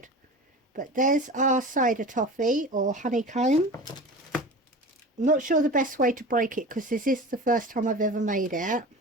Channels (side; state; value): both; normal; correlation 0.34